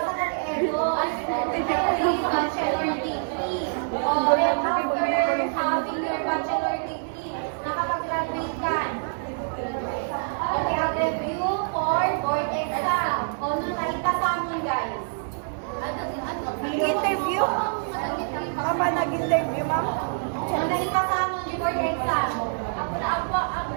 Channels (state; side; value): silent; left; 61 dB below the other